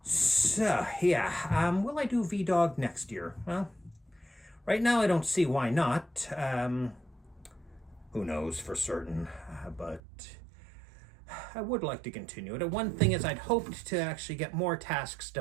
So, yeah, will I do VEDAug next year? Well, right now, I don't see why not. Who knows for certain, but I would like to continue it. One thing is I'd hoped to actually get more tasks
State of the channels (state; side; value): drops out; left; at 10.0 s